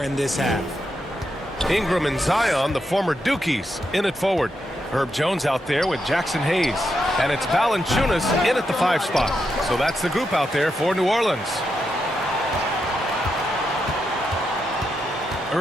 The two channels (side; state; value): both; normal; correlation 0.84